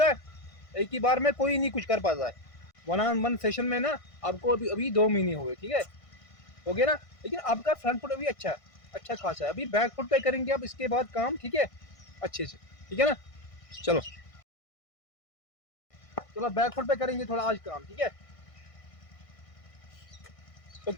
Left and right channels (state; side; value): late; right; 1.6 ms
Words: है। एक ही बार में कोई नहीं कुछ कर पाता है, वन ऑन वन सेशन में ना आपको अभी अभी 2 महीने हुए, ठीक है, हो गया ना। लेकिन आपका फ्रंट फुट अभी अच्छा है, अच्छा खासा है, अभी बैक फुट पे करेंगे अब इसके बाद काम, ठीक है, अच्छे से, ठीक है ना। चलो चलो बैक फुट पे करेंगे थोड़ा आज काम, ठीक है। तो